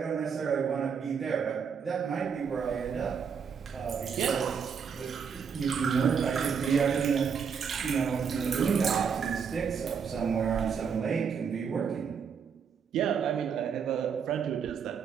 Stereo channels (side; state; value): left; quieter; 6.6 dB